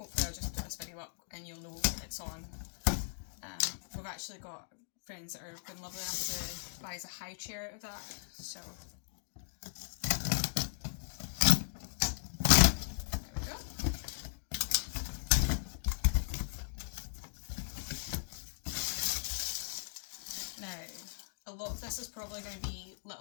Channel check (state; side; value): silent; right; digital silence